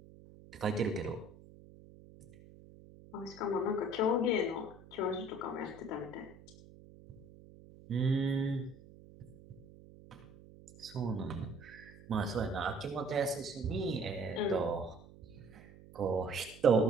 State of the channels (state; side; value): noise; right; hum, 20 dB below the sound